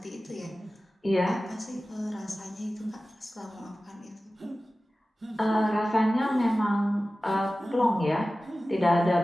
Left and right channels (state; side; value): normal; both; correlation 0.96